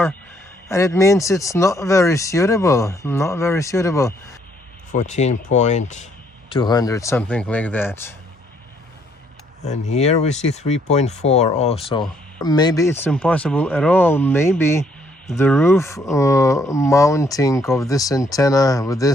and it means it's not very suitable. 14.200, something like that. And here we see 3.4 also. Maybe it's impossible at all. Maybe the roof mounting of this antenna with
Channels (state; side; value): normal; both; correlation 0.68